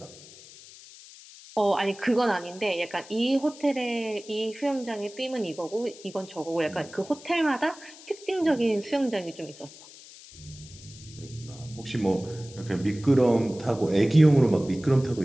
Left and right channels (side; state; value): left; noise; hiss, 19 dB below the sound